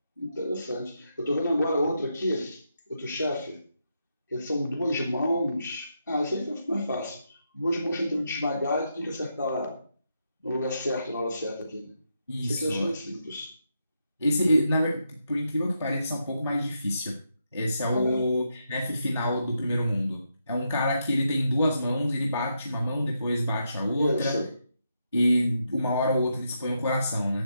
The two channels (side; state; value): both; inverted; correlation -0.82